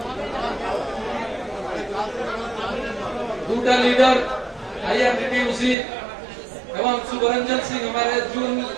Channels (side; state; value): left; drops out; at 5.8 s